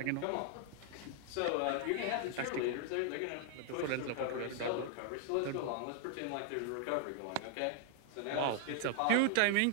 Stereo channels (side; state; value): both; different; correlation 0.00